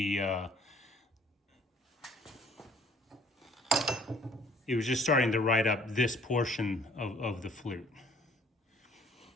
it was just starting to ride up this portion of the flute.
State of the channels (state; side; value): normal; both; correlation 0.58